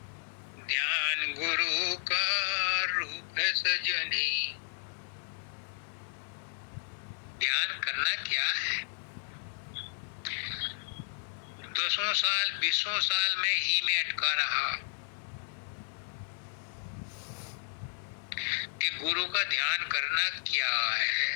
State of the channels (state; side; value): silent; right; digital silence